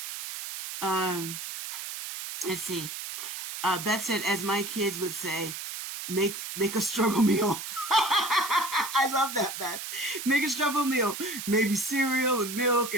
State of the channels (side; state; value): right; noise; hiss, 7 dB below the sound